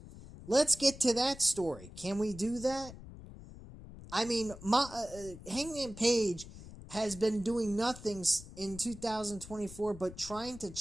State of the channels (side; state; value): left; noise; rumble, 15 dB below the sound